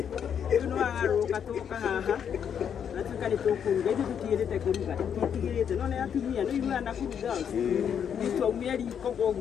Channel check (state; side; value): quieter; right; 8.1 dB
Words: no agaruka toka haha atuka ni tokuruga ithu tutirete kuruga tutigirite no ne atumia no iru ana kuruga itu aumeri